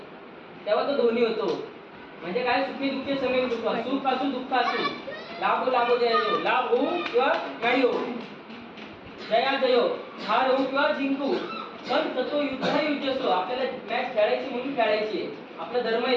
तेव्हा तो दोन्ही होतो. म्हणजे काय, सुखी दुःखे समे कृत्वा, सुख असू दुःख असू, लाभो लाभो जया जयो, लाभ होऊ किंवा नाही होऊ, जया जयो, हार होऊ किंवा जिंकू, पण ततो युद्धाय युद्धस्व, आपल्याला मॅच खेळायची म्हणून खेळायची आहे, आपला धर्म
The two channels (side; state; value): both; identical; correlation 1.00